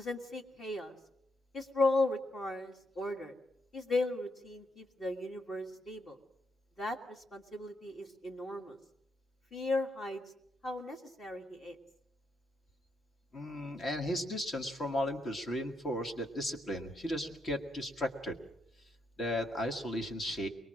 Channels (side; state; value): both; normal; correlation 0.79